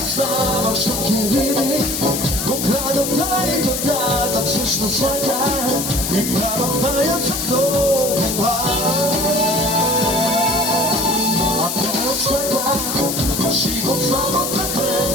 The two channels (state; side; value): noise; left; hiss, 3 dB below the sound